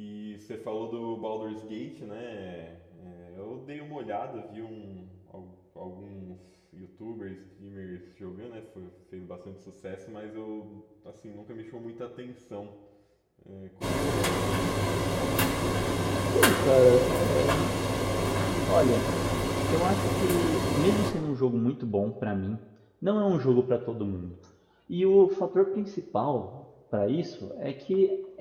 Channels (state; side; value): identical; both; correlation 1.00